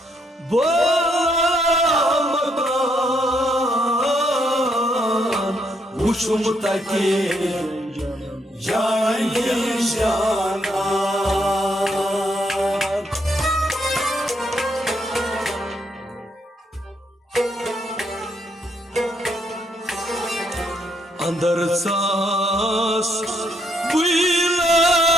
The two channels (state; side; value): normal; both; correlation 0.74